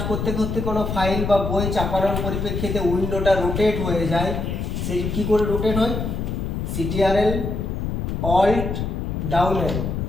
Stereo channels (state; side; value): noise; left; rumble, 2 dB below the sound